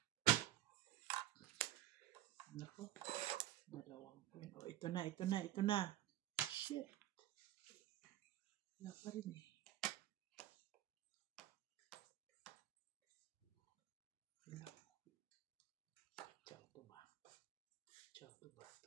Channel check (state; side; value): quieter; left; 13.8 dB